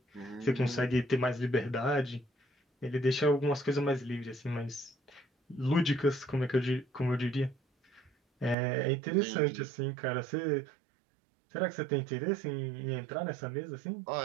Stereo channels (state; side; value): drops out; left; at 8.6 s